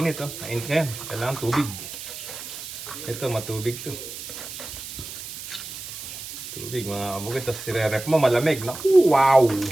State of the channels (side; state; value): right; noise; hiss, 10 dB below the sound